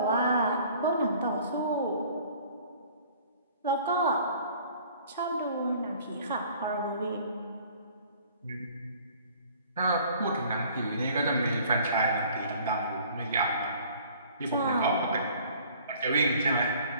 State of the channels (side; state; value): both; inverted; correlation -0.53